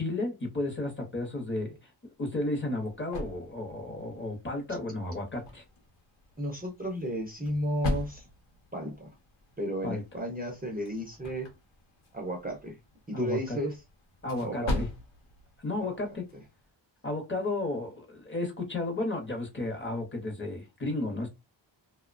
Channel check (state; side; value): normal; both; correlation 0.50